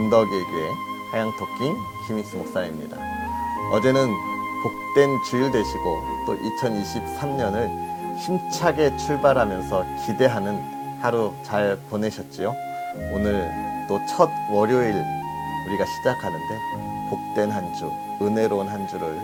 교회 하양토킹 김익수 목사입니다. 어제는 복된 주일 되시고 또 2023년을 힘차게 출발하면서 기대하는 하루 잘 보내셨지요? 오늘 또 첫 월요일 우리가 시작하는데 복된 한 주, 은혜로운 한 주를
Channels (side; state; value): both; identical; correlation 1.00